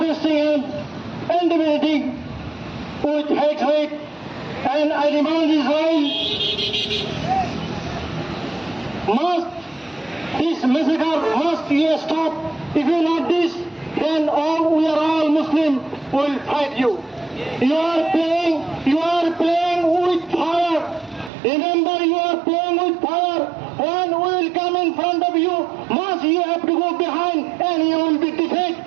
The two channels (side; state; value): left; drops out; at 21.3 s